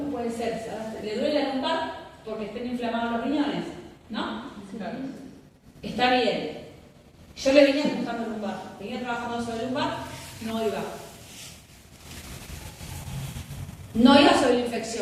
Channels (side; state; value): both; identical; correlation 1.00